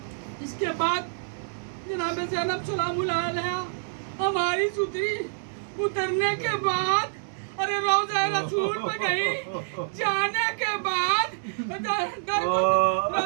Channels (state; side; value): silent; left; 60 dB below the other